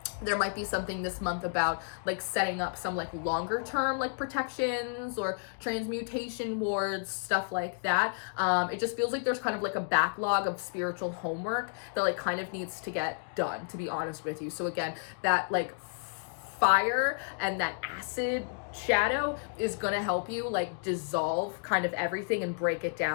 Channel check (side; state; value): right; silent; digital silence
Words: there might be something this month about like setting up some like longer term like protections or transmutation wards, stuff like that. It just feels like there's kind of like a backlog of spiritual homework that like kind of needs to get done, to be honest with you. So again, that like fire and that acid shadow is going to help you like dissolve kind of everything and break it